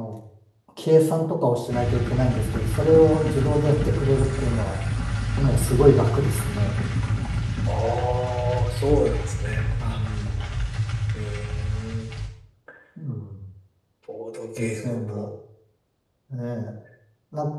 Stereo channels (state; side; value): identical; both; correlation 1.00